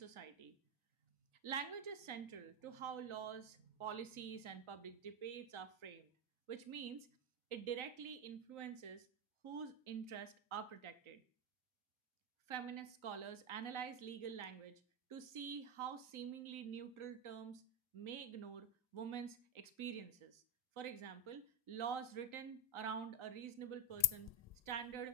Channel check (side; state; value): both; normal; correlation 0.09